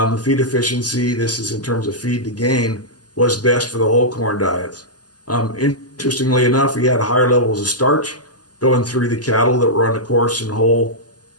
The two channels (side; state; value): both; normal; correlation -0.10